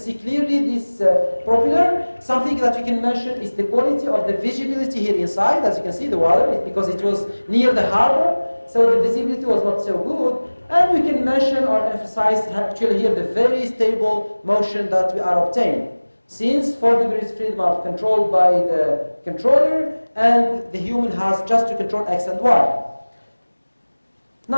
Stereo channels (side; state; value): both; inverted; correlation -1.00